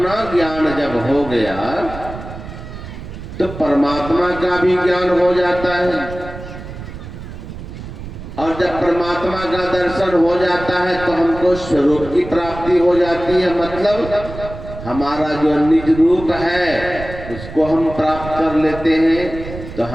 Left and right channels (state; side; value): noise; right; rumble, 11 dB below the sound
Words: ज्ञान जब हो गया तो परमात्मा का भी ज्ञान हो जाता है, और जब परमात्मा का दर्शन हो जाता है तो हमको स्वरूप की प्राप्ति हो जाती है। मतलब हमारा जो निज रूप है उसको हम प्राप्त कर लेते हैं। तो